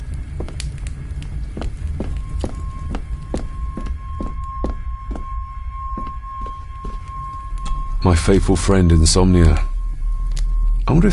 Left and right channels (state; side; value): identical; both; correlation 1.00